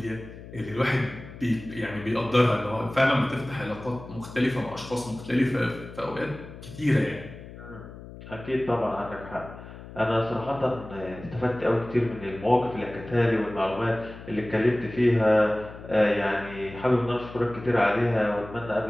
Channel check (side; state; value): left; noise; hum, 15 dB below the sound